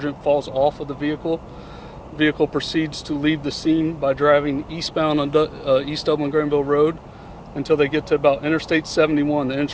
falls off of the vehicle. The vehicle proceeds to leave the scene by driving eastbound on East Dublin Granville Road until they get to about Interstate 71, the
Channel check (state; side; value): identical; both; correlation 1.00